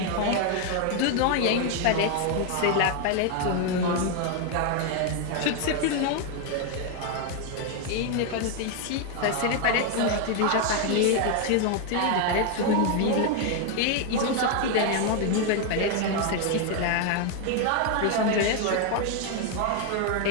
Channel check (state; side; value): different; both; correlation 0.01